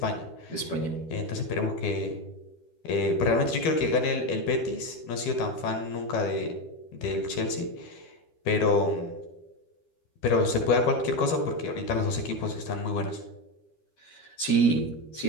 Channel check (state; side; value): late; right; 12 ms